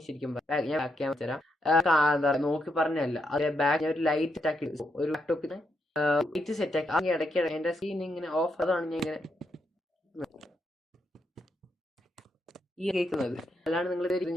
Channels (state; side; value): normal; both; correlation 0.80